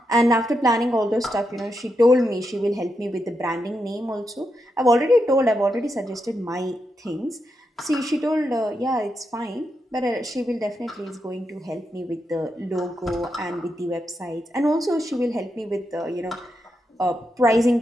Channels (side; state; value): both; normal; correlation 0.84